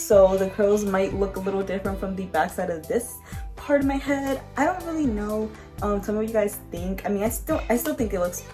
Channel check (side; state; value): both; identical; correlation 1.00